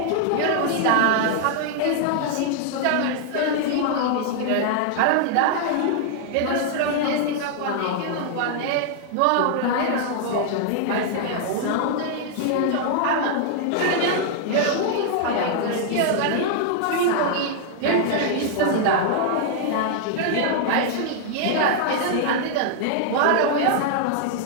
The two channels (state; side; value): different; both; correlation 0.00